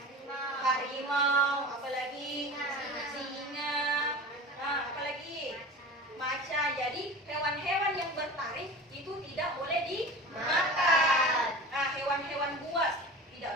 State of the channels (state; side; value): normal; both; correlation 0.34